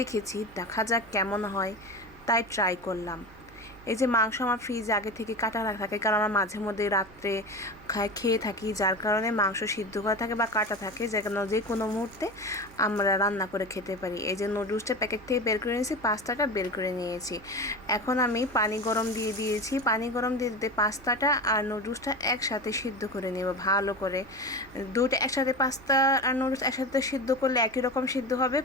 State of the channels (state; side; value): noise; right; hum, 22 dB below the sound